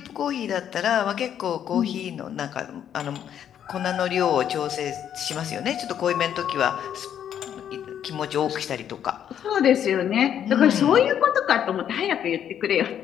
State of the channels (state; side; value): quieter; right; 9.5 dB